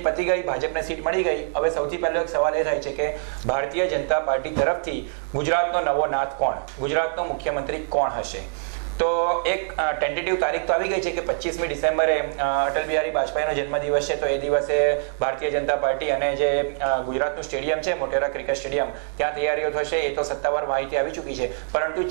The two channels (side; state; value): left; silent; digital silence